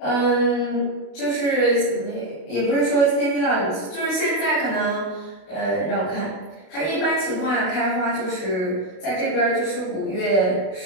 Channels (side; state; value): right; late; 32 ms